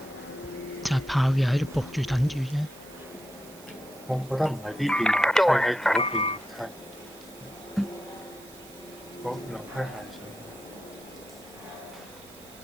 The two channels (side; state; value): right; noise; hiss, 21 dB below the sound